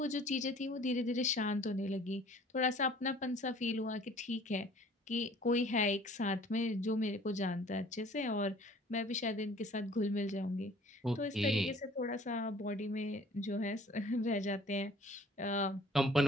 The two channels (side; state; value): both; normal; correlation 0.52